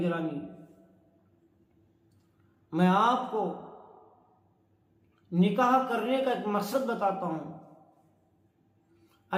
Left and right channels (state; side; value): identical; both; correlation 1.00